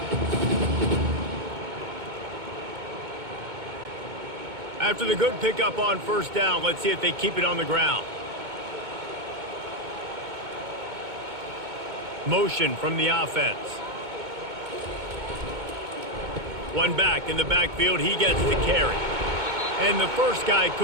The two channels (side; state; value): left; late; 2.2 ms